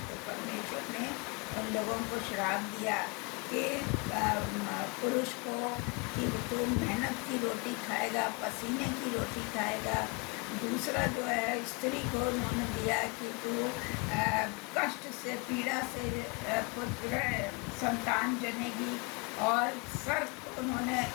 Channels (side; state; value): right; quieter; 30.4 dB